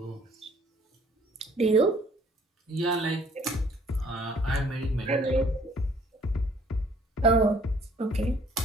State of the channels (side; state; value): both; normal; correlation 0.59